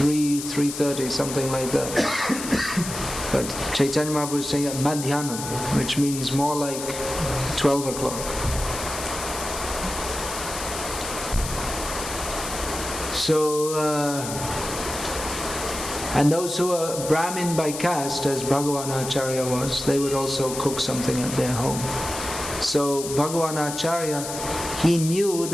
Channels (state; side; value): noise; left; hiss, 7 dB below the sound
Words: something like that. But Chaitanya Mahaprabhu is saying Madhyanam, which means more like 12 o'clock. So, and those who are Brahmin by caste, as Bhagavanacharya was, they would also cook something at their home. So Bhagavanacharya, he knew